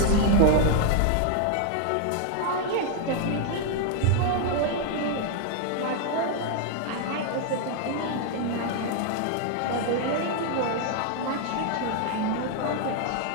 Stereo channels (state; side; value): different; both; correlation 0.00